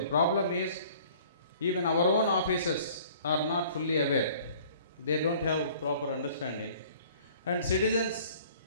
problem is even our own officers are not fully aware. They don't have proper understanding. And citizens,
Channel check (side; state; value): both; inverted; correlation -0.52